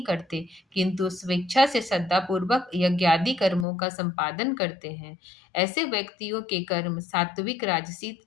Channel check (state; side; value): drops out; right; at 3.7 s